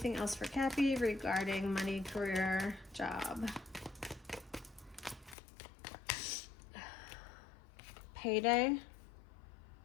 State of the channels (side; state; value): right; drops out; at 5.4 s